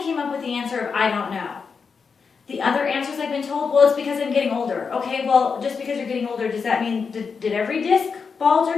came up with the answer of, "I don't know." The other answers I've been told, "Well, it's because I'm getting older." Okay, well, just because you're getting older, does that mean, did every disc bulge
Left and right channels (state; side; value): quieter; right; 5.5 dB